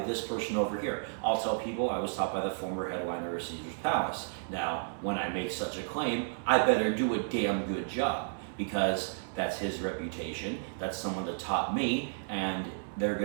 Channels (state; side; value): silent; left; 56 dB below the other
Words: this person over here. I'll tell people I was taught by the former headliner of Caesar's Palace. Now, when I make such a claim, I better do a damn good job because that's his reputation. That's someone that taught me, and